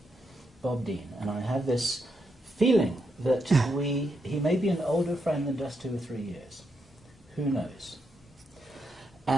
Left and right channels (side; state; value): both; normal; correlation 0.82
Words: Bob Dien. And I have this feeling that he may be an older friend than just 2 or 3 years. Who knows?